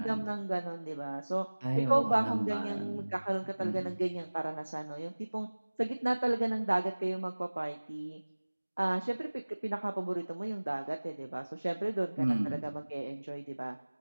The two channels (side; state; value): both; inverted; correlation -1.00